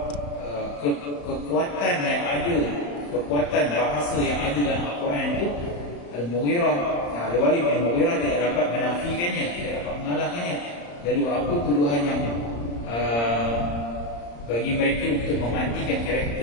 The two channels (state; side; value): late; right; 35 ms